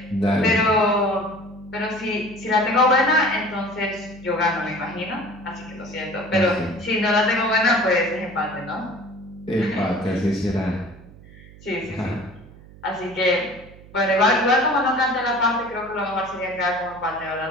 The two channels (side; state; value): right; noise; hum, 21 dB below the sound